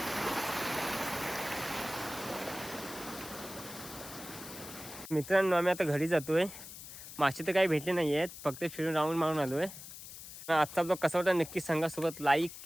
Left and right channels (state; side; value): noise; left; hiss, 13 dB below the sound